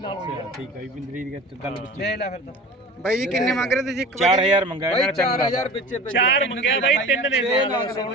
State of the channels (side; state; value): both; normal; correlation 0.38